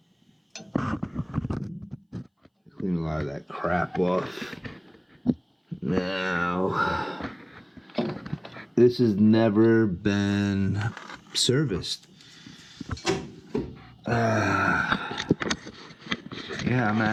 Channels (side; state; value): both; identical; correlation 1.00